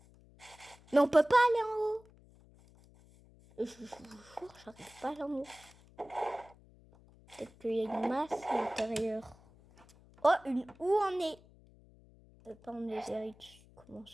Mais on peut pas aller en haut. Je vous jure, j'arrive pas à aller en haut. Peut-être qu'il y a une masse à l'intérieur. Oh, où on est? Pas en Netherite. Comment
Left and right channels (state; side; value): noise; left; hum, 25 dB below the sound